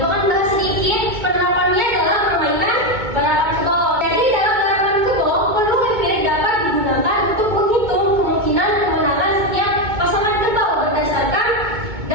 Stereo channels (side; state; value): left; late; 2.2 ms